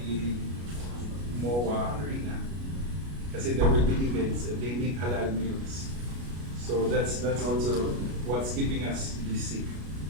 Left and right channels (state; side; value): late; left; 33 ms